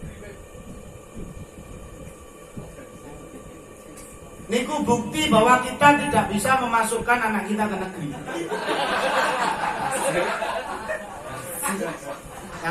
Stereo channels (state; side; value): identical; both; correlation 1.00